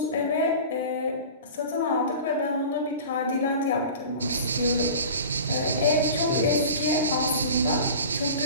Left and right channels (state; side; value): inverted; both; correlation -0.37